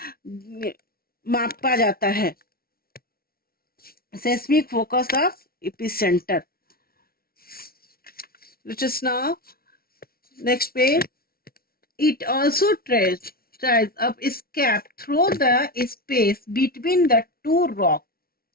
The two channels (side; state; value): right; late; 0.44 ms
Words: मापा जाता है. Seismic focus of epicentre. Let us now next page. It also tries up its cap through the space between the two rocks.